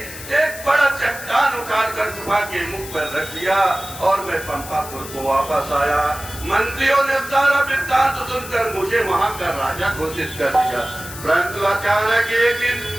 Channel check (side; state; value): left; noise; hiss, 13 dB below the sound